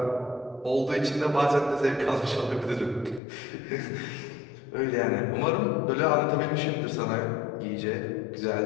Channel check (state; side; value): drops out; right; at 3.2 s